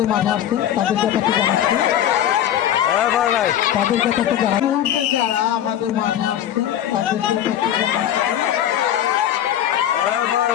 মাঠে আসছে তাদের ব্যাপারটা জানাচ্ছি, তাদের ব্যাপারটা জানা মুহূর্তে যারা আমাদের মাঠে আসছে তাদের ব্যাপারটা জানাচ্ছি।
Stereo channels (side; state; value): right; quieter; 11.0 dB